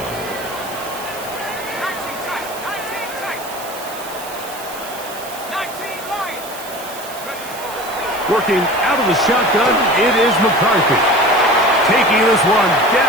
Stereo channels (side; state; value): right; noise; hiss, 14 dB below the sound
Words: 19 Lions. Working out of the shotgun, it is McCarthy. Taking this one